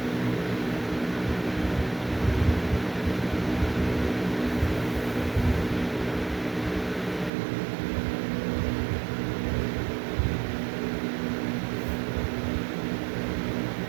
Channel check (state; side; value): drops out; left; at 7.3 s